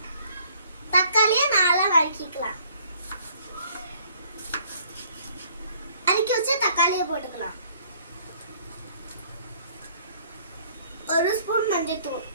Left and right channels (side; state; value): both; inverted; correlation -0.59